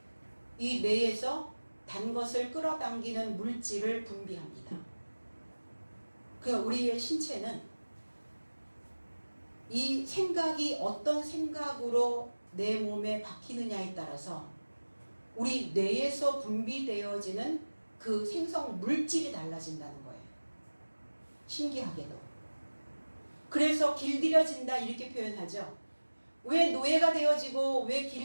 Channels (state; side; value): inverted; both; correlation -1.00